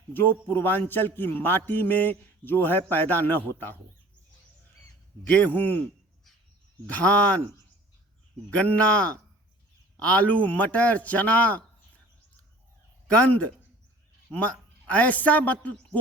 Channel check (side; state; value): both; normal; correlation 0.47